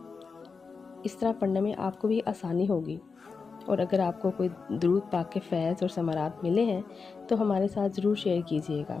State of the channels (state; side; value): quieter; right; 4.9 dB